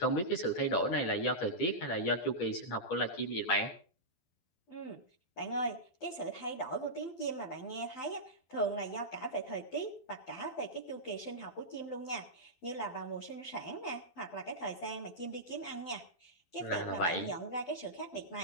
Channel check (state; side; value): late; right; 12 ms